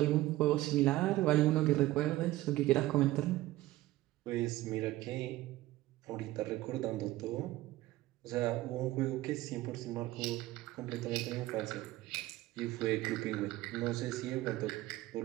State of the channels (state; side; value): quieter; left; 16.8 dB